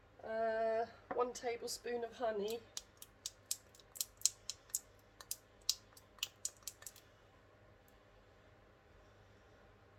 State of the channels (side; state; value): both; identical; correlation 1.00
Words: 1 tablespoon of honey.